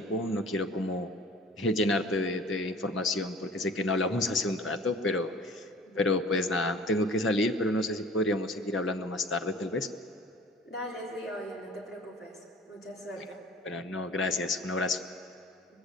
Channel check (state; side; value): normal; both; correlation 0.46